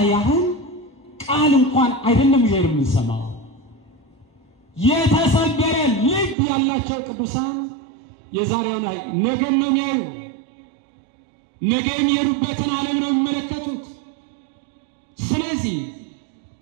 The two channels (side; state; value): left; drops out; at 6.4 s